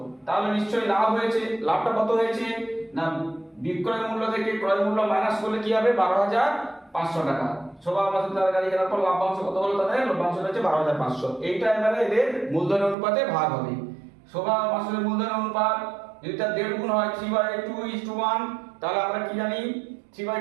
তাহলে নিশ্চয়ই লাভ হয়েছে। লাভটা কত হয়েছে? না বিক্রয় মূল্য থেকে ক্রয় মূল্য মাইনাস করলে কি হবে? 12,500 টাকা। শোভা মাসুদ তার গাড়ি কেনার পর লাভ্যাংশ কত হলো? তাদের লভ্যাংশ হচ্ছে 12,500। এইটা এবারে এদের মূলধনের অনুপাতে ভাগ হবে। শোভা মাসুদের মূলধনের অনুপাত যদি তার 1.5 গুণ হয় 3/2:1, তাহলে আমরা কি জানি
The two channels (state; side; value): drops out; left; at 13.0 s